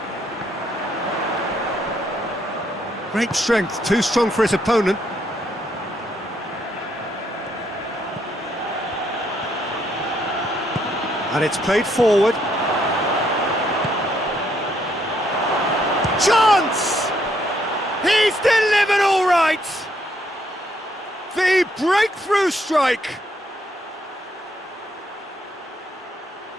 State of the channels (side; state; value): both; normal; correlation 0.72